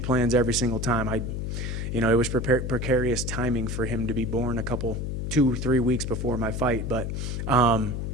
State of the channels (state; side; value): noise; left; hum, 3 dB below the sound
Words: plans every single time. You know, it was precarious timing for him to be born 2-3 weeks before my fight, but I'm